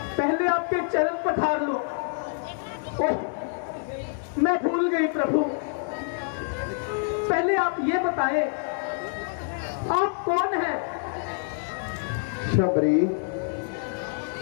पहले आपके चरण पठार लो। ओह, मैं भूल गई प्रभु। पहले आप ये बताएं, आप कौन हैं? शबरी,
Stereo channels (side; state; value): right; silent; digital silence